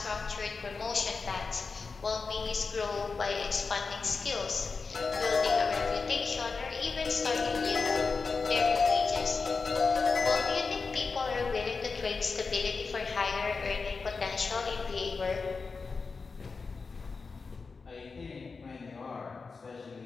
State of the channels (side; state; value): right; quieter; 4.6 dB